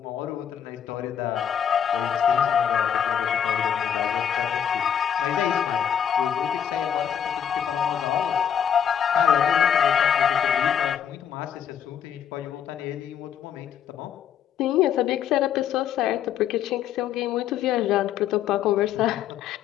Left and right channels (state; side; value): quieter; right; 8.7 dB